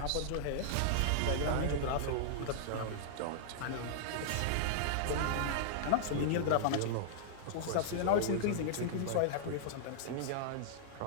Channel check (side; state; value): both; different; correlation -0.01